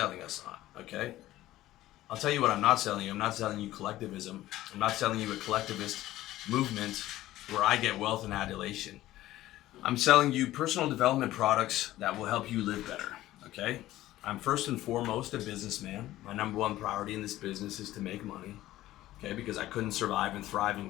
us on? Okay. I'll tell you what I'm not selling you. I'm not selling you collectivism. I'm not selling you a collectivist movement where I get wealth and adulation. I'm selling you personal development products that will help you live better. Okay. I'm first and foremost a businessman. My number one priority in this business is to make money. Okay. Because I couldn't survive and thrive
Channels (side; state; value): right; quieter; 15.3 dB